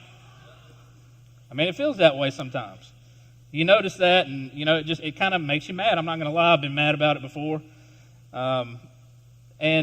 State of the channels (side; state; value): both; identical; correlation 1.00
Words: I mean, it feels that way sometimes. You notice that, and it kind of makes you mad. I'm not going to lie, I've been mad about it before.